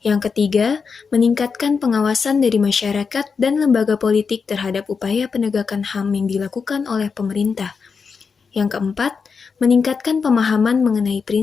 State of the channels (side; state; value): right; quieter; 5.4 dB